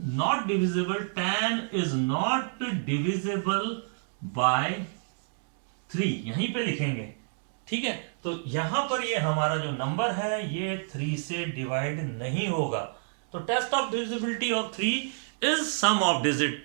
divisible, 10 is not divisible by 3, यहीं पे लिखेंगे। ठीक है, तो यहां पर ये हमारा जो नंबर है ये 3 से डिवाइड नहीं होगा। तो test of divisibility of 3 is sum of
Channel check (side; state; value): left; silent; digital silence